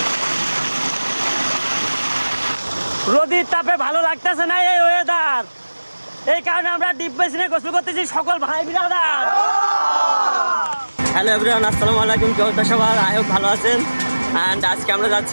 রোদের তাপে ভালো লাগতেছে না এই ওয়েদার, এই কারণে আমরা ডিপ বেসিনে গোসল করতেছি সকল ভাই বিরাদার। হ্যালো এভরিওয়ান, আসসালামু আলাইকুম। কেউ তো সবার আয় হোক ভালো আছেন। অ্যান্ড আজকে আমরা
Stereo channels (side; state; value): both; inverted; correlation -1.00